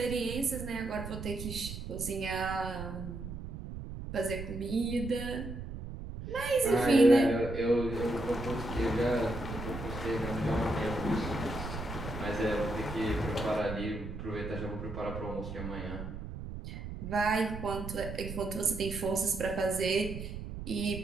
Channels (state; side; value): noise; right; rumble, 8 dB below the sound